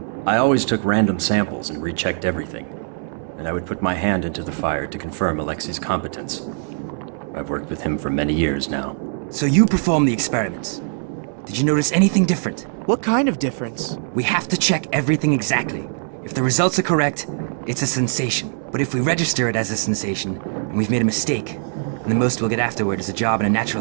I always took random samples and rechecked everything. And I would put my hand into the fire to confirm Alexei's competence. I've worked with him for many years now. So you performed the experiments. Did you notice anything different? What kind of difference? We have to check everything exactly. If the results are correct, it's a sensation. But if we register it as a sensation, and we've made a mistake, then the most we'll get afterward is a job in a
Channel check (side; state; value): left; silent; 64 dB below the other